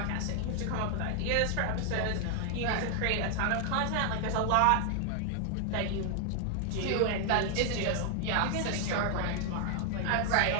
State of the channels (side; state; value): both; different; correlation 0.00